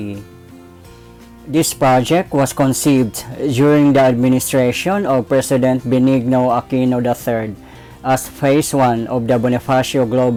This project was conceived during the administration of President Benigno Aquino III as Phase 1 of the Bonifacio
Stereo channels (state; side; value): identical; both; correlation 1.00